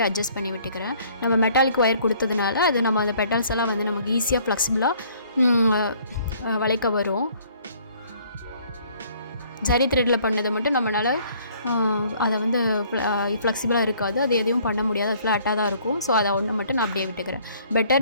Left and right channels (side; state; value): both; inverted; correlation -0.59